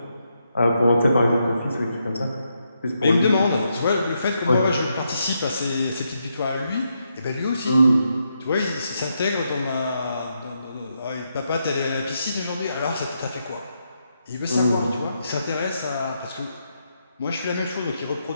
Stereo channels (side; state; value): both; inverted; correlation -0.81